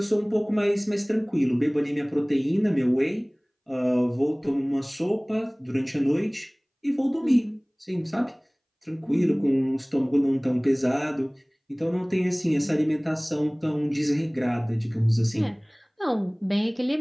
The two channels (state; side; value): identical; both; correlation 1.00